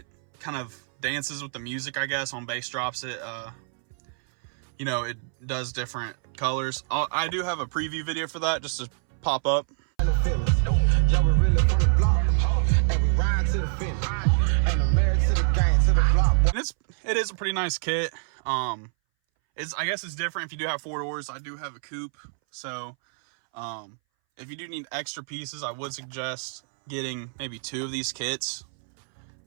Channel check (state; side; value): silent; left; 61 dB below the other